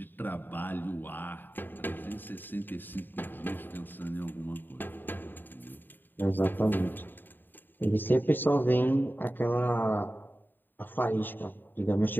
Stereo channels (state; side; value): late; right; 0.092 ms